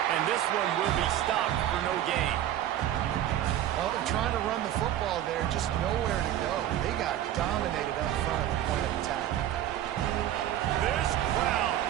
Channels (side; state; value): left; quieter; 12.0 dB